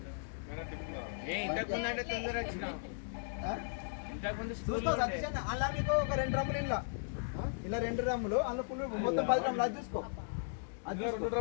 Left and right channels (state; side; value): silent; right; digital silence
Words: ఇంతకుముందంటే తొందర వచ్చిన అలా మీకు ఒక 2 డ్రమ్ములు ఇలా 2 డ్రమ్ములు అందులో ఫుల్ మొత్తం 10 డ్రమ్ములు అది చూసుకో. అది 2